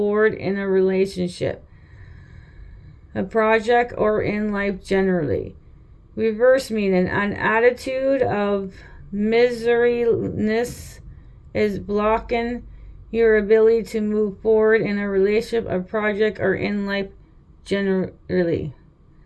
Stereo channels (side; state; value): both; identical; correlation 1.00